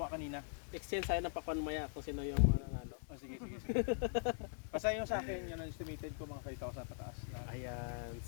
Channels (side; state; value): right; silent; digital silence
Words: kanina. exchange tayo ng pakwan maya kung sino yung ano. Oh, sige. Basta yung sa akin, yun ang estimated ko mga 5,000 pataas. Lahat. Ayan.